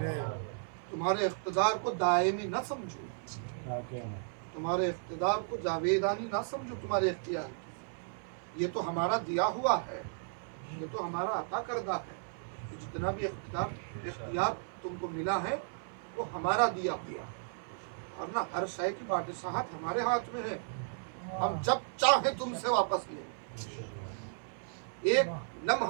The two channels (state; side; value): silent; left; 55 dB below the other